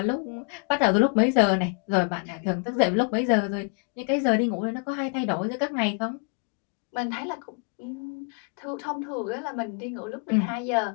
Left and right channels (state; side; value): quieter; right; 37.5 dB